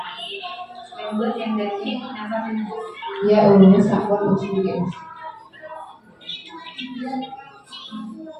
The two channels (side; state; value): both; identical; correlation 1.00